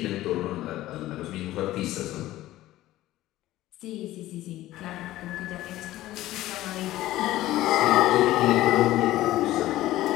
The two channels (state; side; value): quieter; right; 15.6 dB